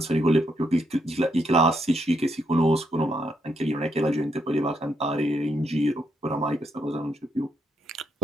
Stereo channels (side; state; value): both; normal; correlation 0.77